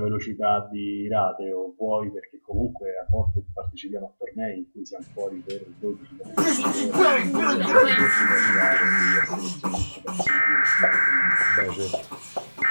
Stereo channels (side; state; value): both; inverted; correlation -1.00